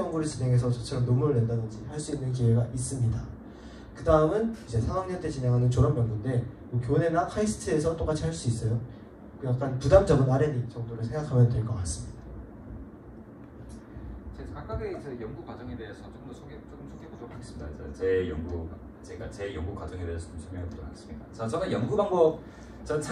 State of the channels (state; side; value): identical; both; correlation 1.00